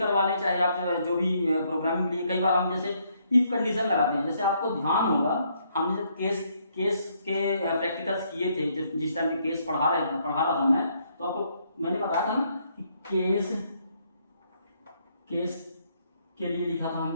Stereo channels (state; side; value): inverted; both; correlation -0.71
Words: लें, चाहे आप जो भी प्रोग्रामिंग के लिए कई बार हम जैसे इफ कंडीशन लगाते हैं। जैसे आपको ध्यान होगा हमने जब केस के प्रैक्टिकल्स किए थे, जिस टाइम में केस पढ़ा रहा था मैं, तो आपको मैंने बताया था ना कि केस के लिए लिखा था